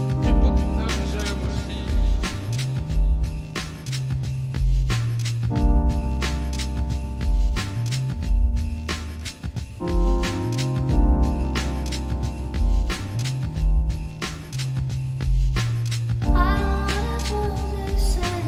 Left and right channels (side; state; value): both; identical; correlation 1.00